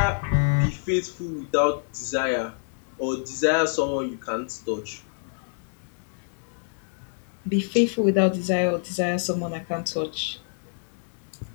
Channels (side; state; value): right; silent; digital silence